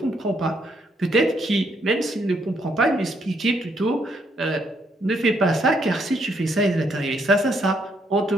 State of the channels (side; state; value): both; normal; correlation 0.72